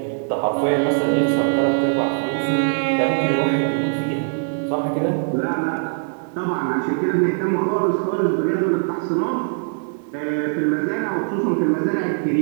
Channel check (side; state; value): left; silent; digital silence